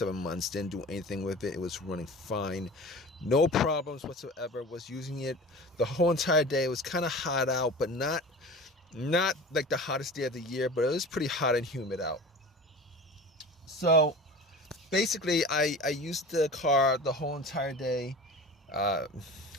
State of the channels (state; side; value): normal; both; correlation 0.36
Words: months. Didn't do anything with it. It was running fine. No problems whatsoever. Was using it the whole entire day. It was kind of hot out, but not like the hottest day of the year, but it was pretty hot and humid out. So basically I used the car the whole entire day. Uh,